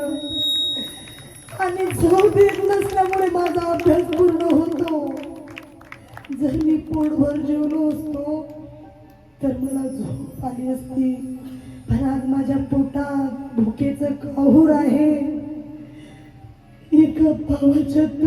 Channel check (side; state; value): both; identical; correlation 1.00